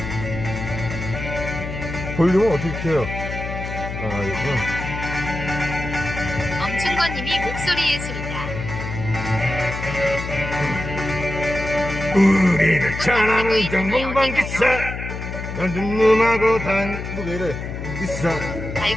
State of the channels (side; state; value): left; noise; hum, 7 dB below the sound